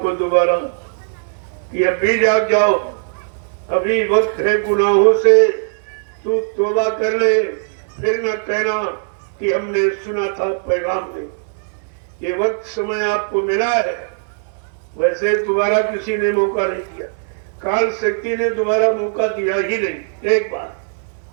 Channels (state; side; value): silent; left; digital silence